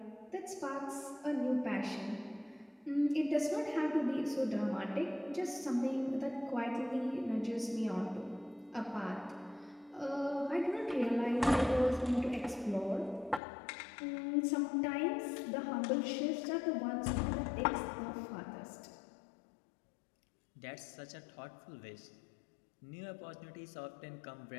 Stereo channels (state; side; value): drops out; right; at 13.4 s